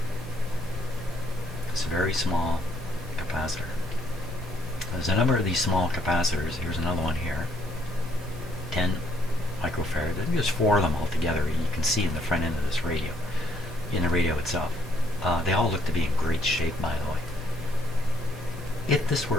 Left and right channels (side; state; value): both; normal; correlation 0.67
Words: It's a very small capacitor. There's a number of these small capacitors. Here's another one here. 10 microfarad. There's 4 of them altogether. You can see in the front end of this radio, in the radio itself. They all look to be in great shape, by the way. If this